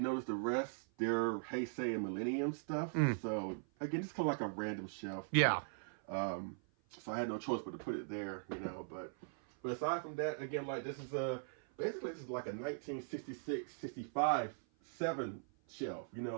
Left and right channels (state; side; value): silent; left; 51 dB below the other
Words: the rest, they're Heisei and Millennium stuff. So again, it's kind of like a random shelf. Yeah. So I had no choice but to put it there, you know. But aside from that, again, like this is basically this is like a 1966, 65, 7 shelf. You